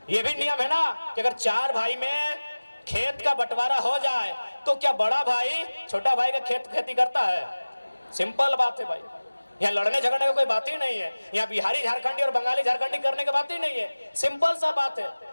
ये भी नियम है ना कि अगर 4 भाई में खेत का बंटवारा हो जाए तो क्या बड़ा भाई छोटा भाई का खेती करता है? सिंपल बात है भाई, यहाँ लड़ने झगड़ने की कोई बात ही नहीं है, यहाँ बिहारी झारखंडी और बंगाली झारखंडी करने की बात ही नहीं है, सिंपल सा बात है।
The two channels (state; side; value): inverted; both; correlation -1.00